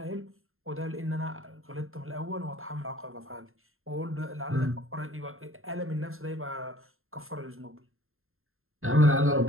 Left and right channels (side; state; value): left; late; 0.61 ms